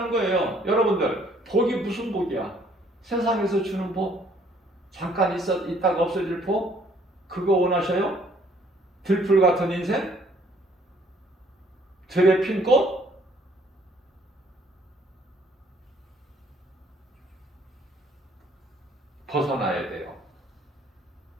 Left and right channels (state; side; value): normal; both; correlation 0.62